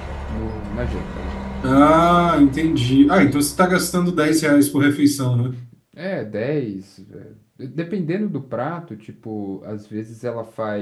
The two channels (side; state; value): both; identical; correlation 1.00